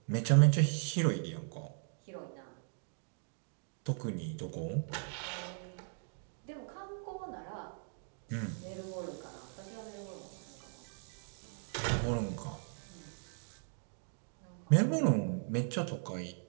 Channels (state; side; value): silent; left; 53 dB below the other